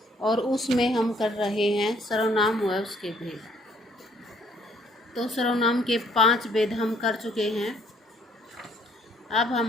और उसमें हम कर रहे हैं सर्वनाम व उसके भेद। तो सर्वनाम के 5 भेद हम कर चुके हैं। अब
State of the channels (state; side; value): normal; both; correlation 0.63